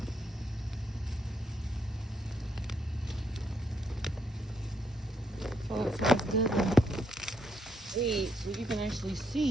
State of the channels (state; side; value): normal; both; correlation 0.77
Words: Oh, it sounds good. Weed, so you can actually